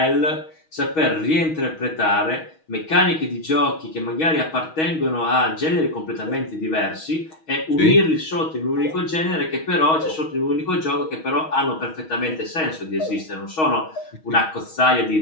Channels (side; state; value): right; late; 6.3 ms